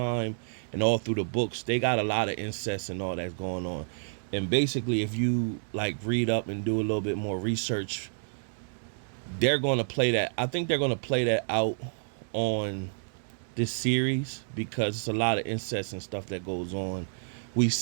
and all through the books, they got a lot of incest and all that's going on. And basically, if you like read up and do a little bit more research, they're going to play that. I think they're going to play that out on this series because it's a lot of incest and stuff that goes on. We've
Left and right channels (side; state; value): left; silent; digital silence